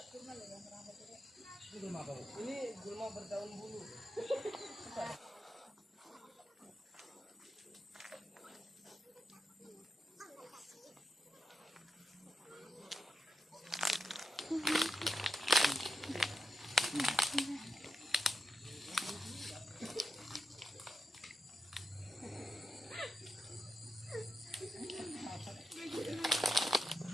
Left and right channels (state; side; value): normal; both; correlation 0.87